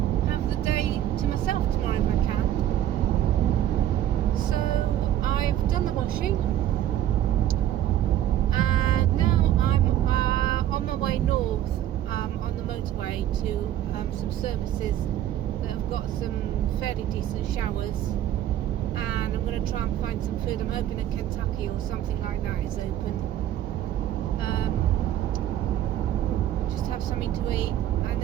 have the day to myself tomorrow if I can. So I've done the washing, and now I'm on my way north on the motorway to some services that have got some fairly decent showers, and I'm going to try and find some food. I'm hoping that Kentucky or something like that is open. Just have something to eat, and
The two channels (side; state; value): left; quieter; 11.9 dB